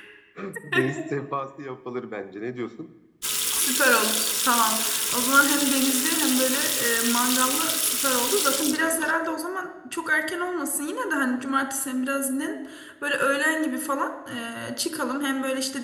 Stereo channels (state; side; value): identical; both; correlation 1.00